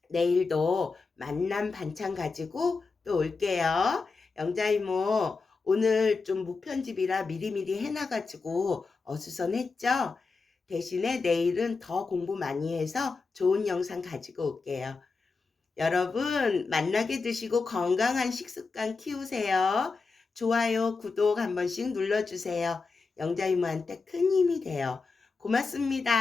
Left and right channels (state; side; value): quieter; right; 4.3 dB